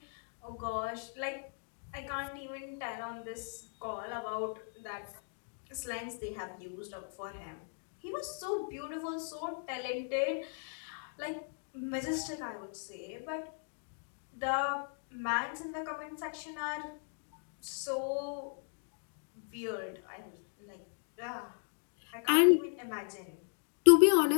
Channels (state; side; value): silent; right; 53 dB below the other